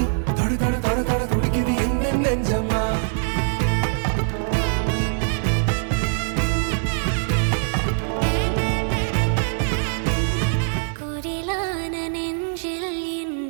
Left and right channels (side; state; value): left; silent; digital silence